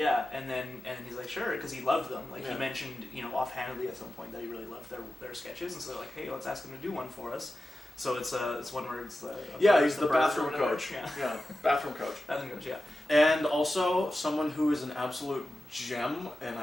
and then he's like, sure, because he loved them. Like, Yeah. he mentioned, offhandedly at some point that he really loved their sketches, and so they're like, hey, let's ask him to do one for us. So it's one where it's he's the bird bathroom or whatever. coach. Yeah, Bathroom coach. bathroom coach. Yeah. And also, someone who is an absolute gem, and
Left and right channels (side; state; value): both; normal; correlation 0.93